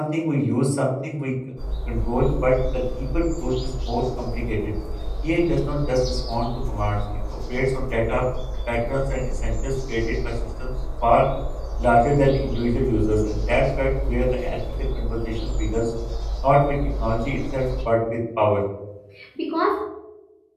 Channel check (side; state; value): both; identical; correlation 1.00